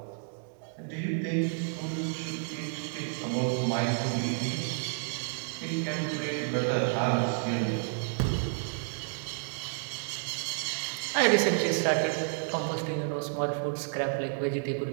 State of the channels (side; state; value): left; silent; digital silence